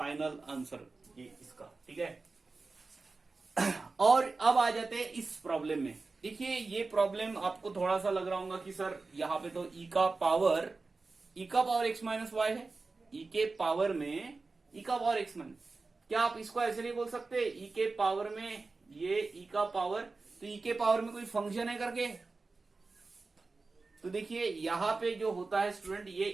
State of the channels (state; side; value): quieter; left; 3.8 dB